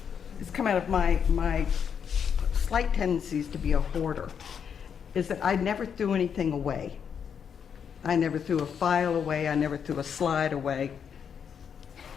has come out of my slight tendencies to be a hoarder is that I never threw anything away. I never threw a file away. I never threw a slide away.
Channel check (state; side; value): quieter; right; 7.4 dB